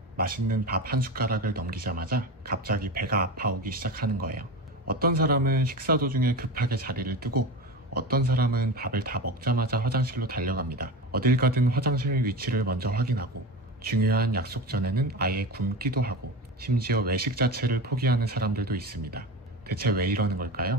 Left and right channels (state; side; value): normal; both; correlation 0.26